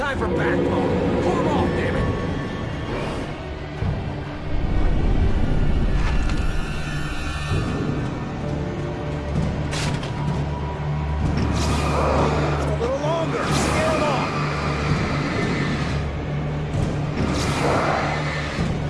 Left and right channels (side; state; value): both; identical; correlation 1.00